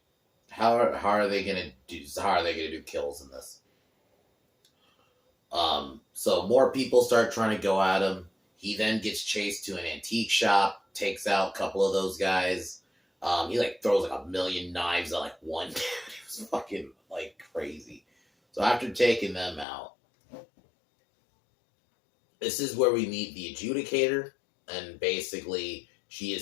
how are they gonna do kills in this? So more people start trying to go at him. He then gets chased to an antique shop, takes out a couple of those guys. He like throws like 1,000,000 knives at like one dude. It was fucking like crazy. So after taking them out, this is where we meet the adjudicator, and basically she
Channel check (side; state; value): right; drops out; at 19.7 s